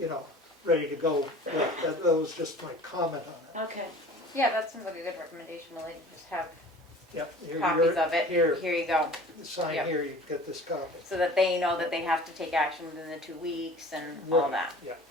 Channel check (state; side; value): normal; both; correlation 0.44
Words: know, ready to go. Yeah, that was just my comment on it. Okay. Yeah, that seems like a good recommendation, Lily, just have Yep. copies of it. Here, Here you go. sign Yep. here, you get this copy. So that they know that they have to take action within the 2 weeks and all Right, that. Yeah.